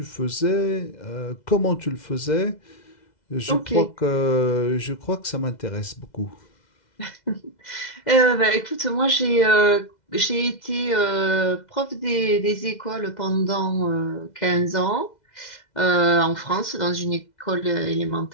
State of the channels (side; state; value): right; late; 2.0 ms